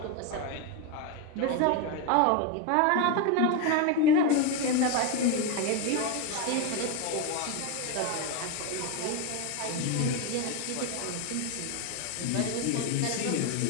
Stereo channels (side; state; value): both; different; correlation 0.02